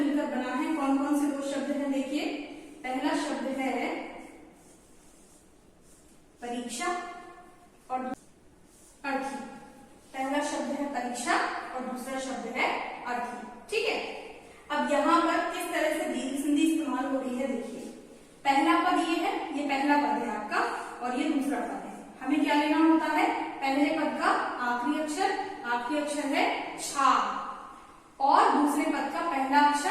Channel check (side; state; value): both; identical; correlation 1.00